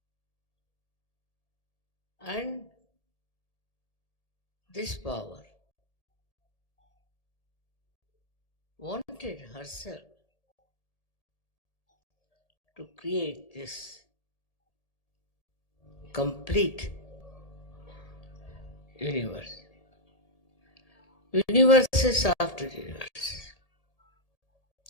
And this power wanted herself to create this complete universe. Universe is after universe.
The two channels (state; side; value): late; right; 1.8 ms